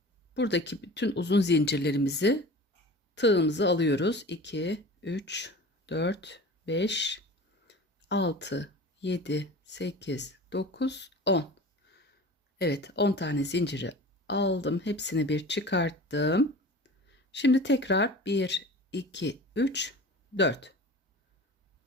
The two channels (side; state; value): both; normal; correlation 0.38